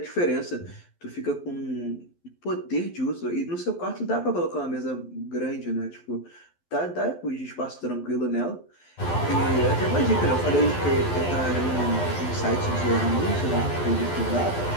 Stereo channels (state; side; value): late; right; 12 ms